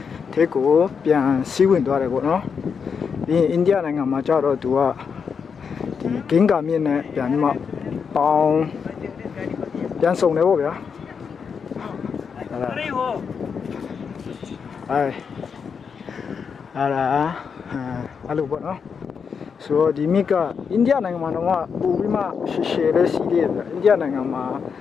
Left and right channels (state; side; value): quieter; right; 6.2 dB